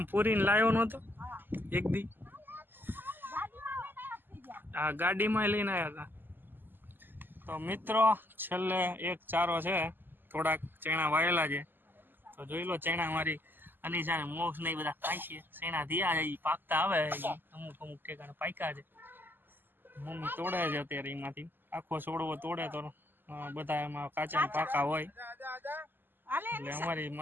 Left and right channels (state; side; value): late; left; 0.092 ms